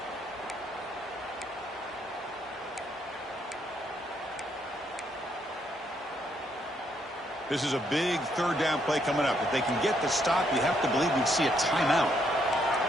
This is a big 3rd down play coming up. If they can get the stop, you have to believe we'd see a timeout.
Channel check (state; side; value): normal; both; correlation 0.73